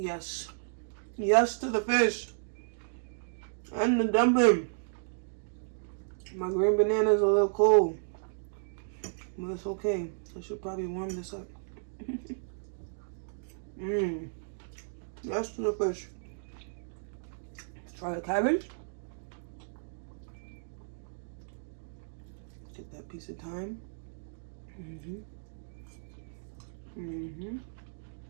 Yes to the fish. And the dumpling. My green banana is a little cold. But it's okay. I should probably warm this up. Yes to the fish. Let's try the cabbage. Get that piece of thyme.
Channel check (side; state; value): left; silent; digital silence